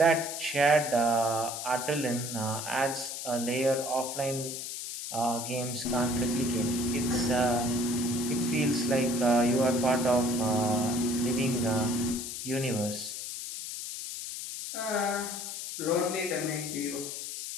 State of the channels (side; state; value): left; noise; hiss, 6 dB below the sound